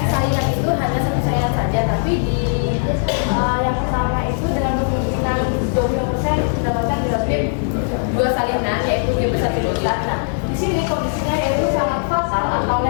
saingan itu hanya satu saingan saja, tapi di yang pertama itu dengan kemungkinan 20% mendapatkan genotip 2 salinan yaitu G besar T besar. Nah, di sini kondisinya yaitu sangat fatal atau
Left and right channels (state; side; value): silent; right; 57 dB below the other